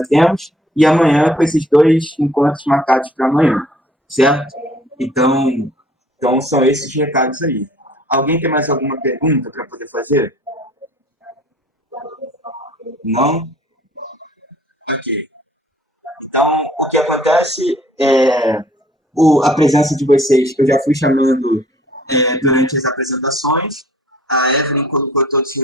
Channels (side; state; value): both; normal; correlation 0.56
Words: temos, e amanhã com esses 2 encontros marcados para amanhã, certo? Então, são esses recados aí. Alguém tem mais alguma pergunta para poder fazer? Não? Ok. Então, o que acontece é a presença de vocês, eu já fui chamando durante as apresentações. A Evelyn colocou todos os